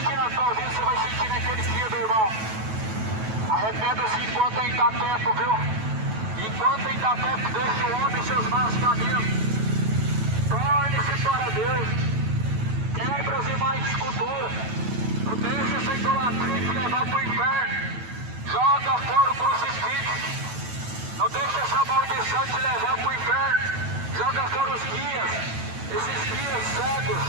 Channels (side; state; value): left; late; 9.2 ms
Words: na sua vida, você vai sentir naquele dia, meu irmão. Arrependa-se enquanto ainda dá tempo, viu? Enquanto ainda dá tempo, deixe o homem seus maus caminhos. Torne-se para Deus. Quebre as imagens esculturas.